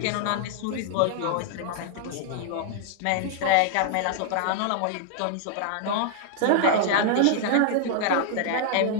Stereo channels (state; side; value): different; both; correlation 0.00